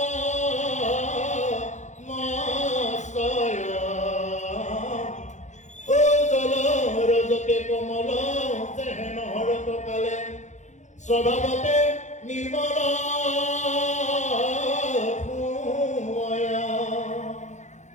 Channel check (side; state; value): right; late; 0.34 ms